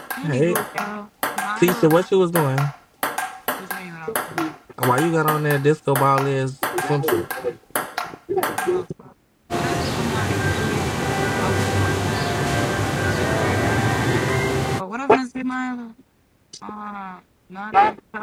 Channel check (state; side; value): identical; both; correlation 1.00